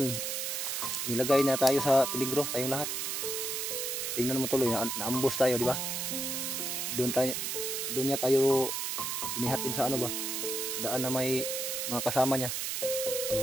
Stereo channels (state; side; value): noise; right; hiss, 2 dB below the sound